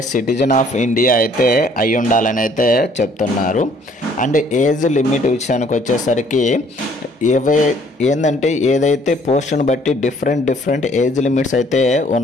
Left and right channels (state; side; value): normal; both; correlation 0.60